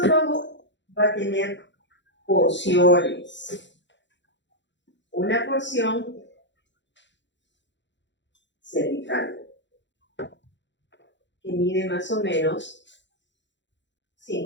va a tener porciones. Una porción cervical, que mide más o menos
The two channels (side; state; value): right; late; 0.53 ms